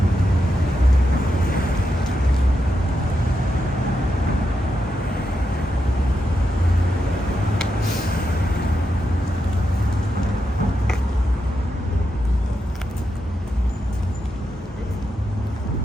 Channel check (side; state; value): both; normal; correlation 0.85